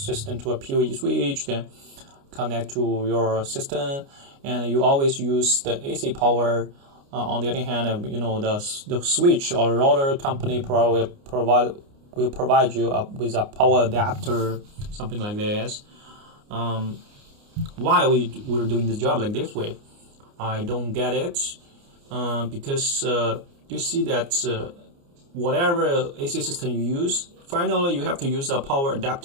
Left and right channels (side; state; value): left; late; 29 ms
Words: to a PoE switch, then connect to your system, and you always use the AC power. On the other hand, the switch or router company will provide you with a power adapter, something like this. Why we're doing this job like this way? I don't get it, because you see that whatever AC system you use, finally you have to use a power